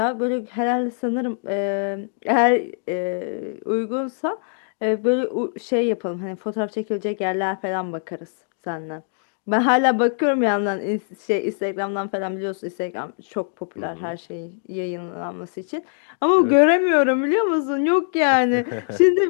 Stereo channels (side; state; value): right; silent; digital silence